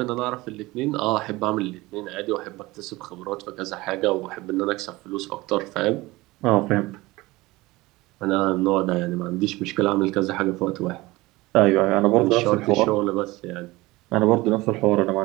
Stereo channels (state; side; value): quieter; left; 20.5 dB